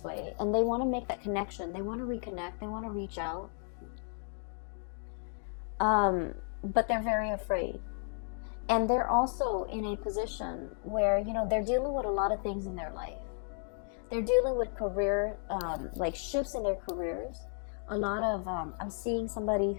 way, and they want to make that connection. They want to reconnect. They want to reach out. But they're very afraid. And they're also in a position where, you know, they're dealing with a lot of things in their life. They're dealing with career, like shifts in their careers. A lot of, I'm seeing somebody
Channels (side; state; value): right; silent; 55 dB below the other